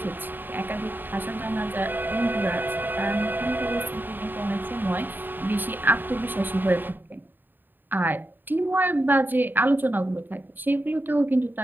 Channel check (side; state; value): left; late; 0.092 ms